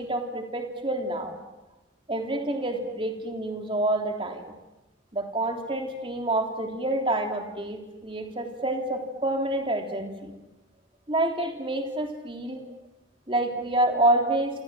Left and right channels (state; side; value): normal; both; correlation 0.18